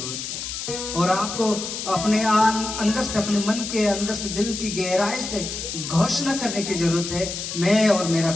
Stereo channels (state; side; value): noise; left; hiss, 6 dB below the sound